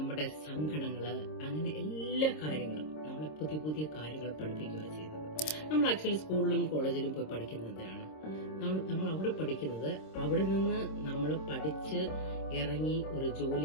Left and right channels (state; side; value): late; right; 26 ms